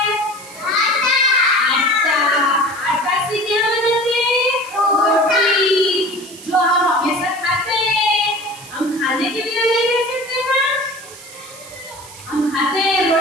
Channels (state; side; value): noise; right; hiss, 17 dB below the sound